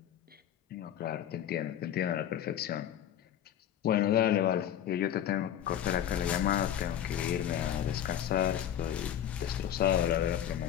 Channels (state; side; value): quieter; right; 10.5 dB